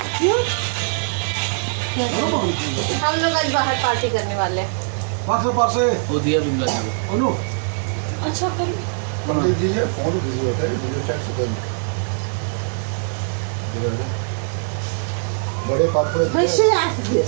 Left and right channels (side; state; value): left; silent; digital silence